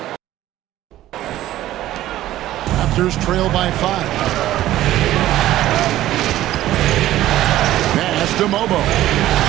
Raptors trail by 5. Pass to Mobo.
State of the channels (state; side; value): quieter; left; 14.2 dB